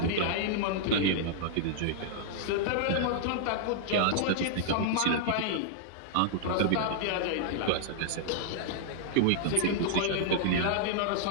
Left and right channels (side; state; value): both; different; correlation -0.01